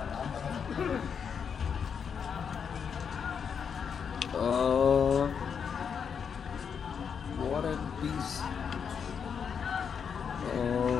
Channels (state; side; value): quieter; right; 6.9 dB